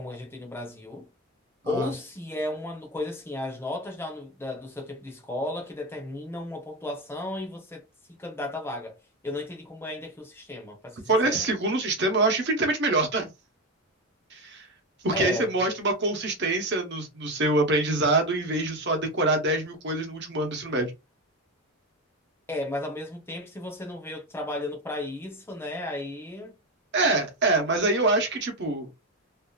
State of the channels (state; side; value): normal; both; correlation 0.15